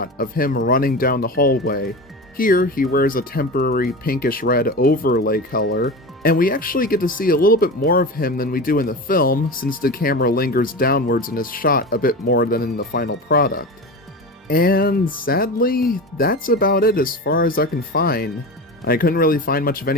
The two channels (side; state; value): both; normal; correlation 0.27